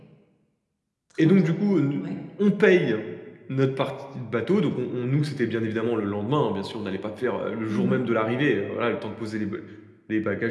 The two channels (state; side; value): identical; both; correlation 1.00